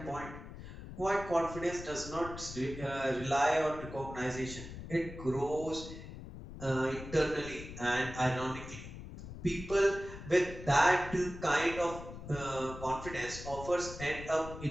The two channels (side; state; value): left; noise; rumble, 12 dB below the sound